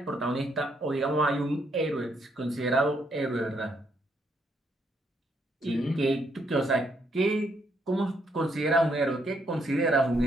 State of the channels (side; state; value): both; normal; correlation 0.74